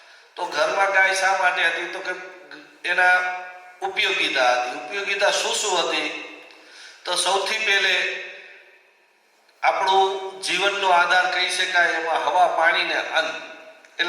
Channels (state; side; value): identical; both; correlation 1.00